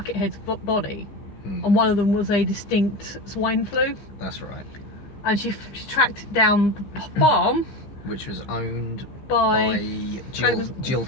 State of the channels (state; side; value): late; right; 15 ms